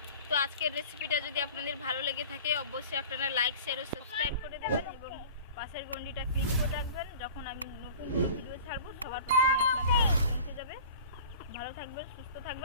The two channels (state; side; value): inverted; both; correlation -0.42